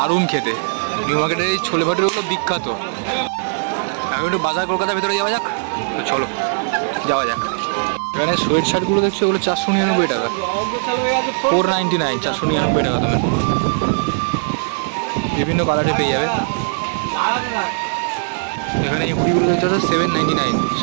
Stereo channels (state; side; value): silent; left; digital silence